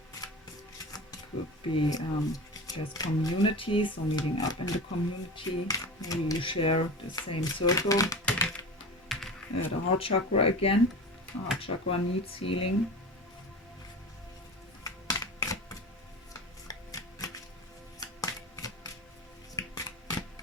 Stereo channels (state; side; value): normal; both; correlation 0.31